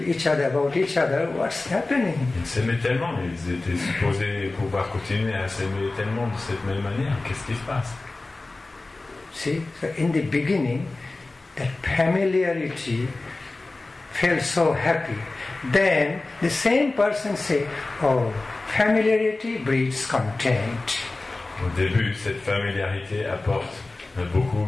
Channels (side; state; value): right; quieter; 3.2 dB